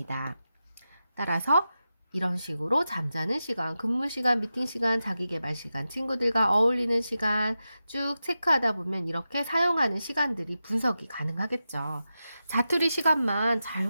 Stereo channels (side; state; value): both; inverted; correlation -0.91